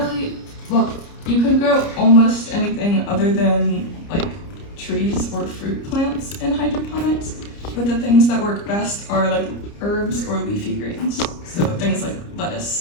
well, you could grow almost anything other than like trees or fruit plants in hydroponics, but the things that work best are like herbs or leafy greens. So things like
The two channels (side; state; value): right; late; 30 ms